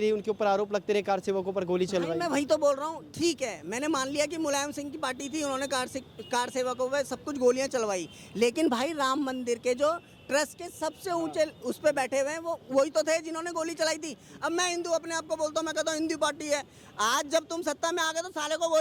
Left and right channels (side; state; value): both; identical; correlation 1.00